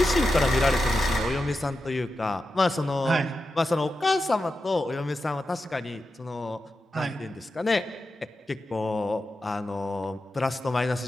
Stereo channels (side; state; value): both; normal; correlation 0.90